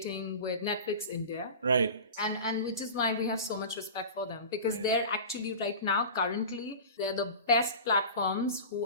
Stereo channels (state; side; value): inverted; both; correlation -0.32